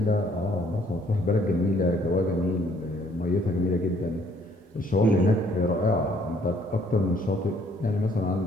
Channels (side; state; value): both; normal; correlation 0.63